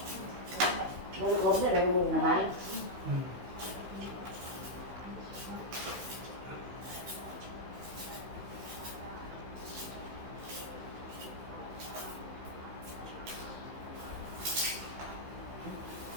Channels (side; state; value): left; late; 16 ms